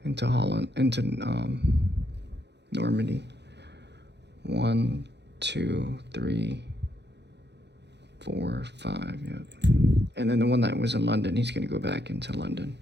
into Holland, into Normandy. 1, 2, 3, 4, 5. Yep. And then the one that was in London, he's gonna go back into London.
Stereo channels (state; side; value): late; left; 0.50 ms